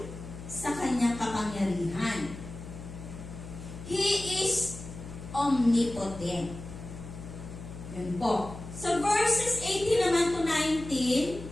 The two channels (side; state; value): left; noise; hum, 12 dB below the sound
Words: sa kanyang kapangyarihan. He is omnipotent. Yun po. Sa verses 18 naman to 19,